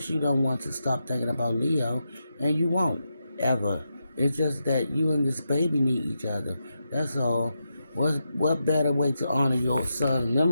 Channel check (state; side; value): inverted; both; correlation -0.86